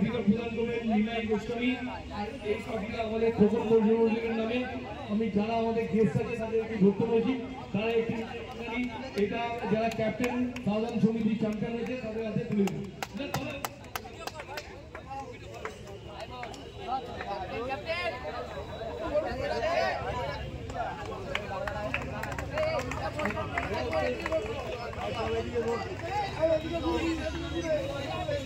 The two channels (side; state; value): both; identical; correlation 1.00